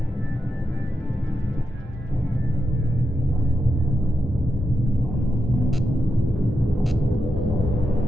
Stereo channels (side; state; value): both; normal; correlation 0.87